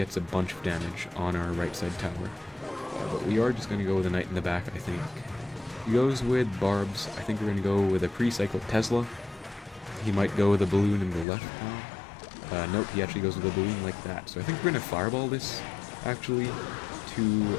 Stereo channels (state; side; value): drops out; right; at 11.2 s